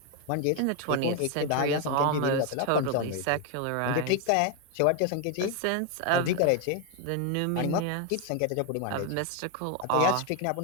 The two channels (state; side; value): different; both; correlation 0.01